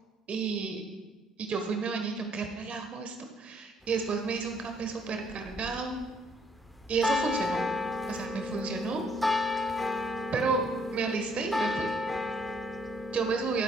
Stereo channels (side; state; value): both; normal; correlation 0.66